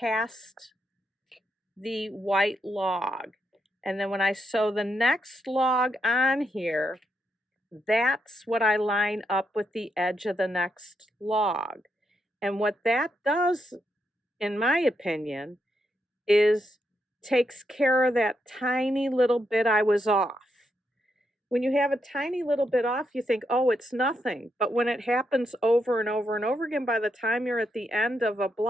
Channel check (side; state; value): both; normal; correlation 0.81